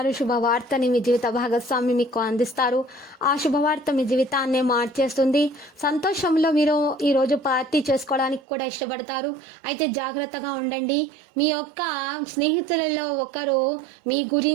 శుభవార్తని మీ జీవిత భాగస్వామి మీకు అందిస్తారు. ఆ శుభవార్త మీ జీవితాన్నే మార్చేస్తుంది. సంతోషంలో మీరు ఈ రోజు పార్టీ చేసుకోవడానికి కూడా ఇష్టపడతారు. అయితే జాగ్రత్తగా ఉండండి. మీ యొక్క స్నేహితులలో ఒకరు మీ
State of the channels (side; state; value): left; drops out; at 8.4 s